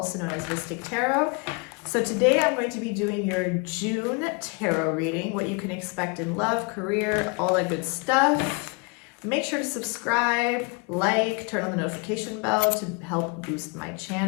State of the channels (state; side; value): quieter; right; 29.8 dB